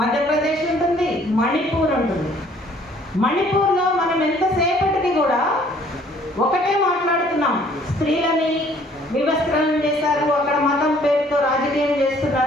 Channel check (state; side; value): normal; both; correlation 0.59